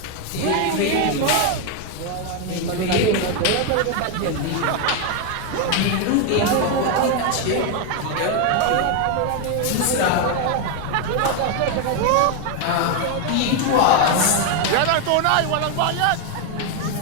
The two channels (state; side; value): different; both; correlation 0.01